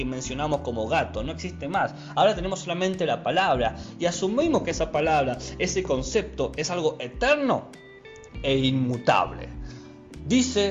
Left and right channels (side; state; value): both; identical; correlation 1.00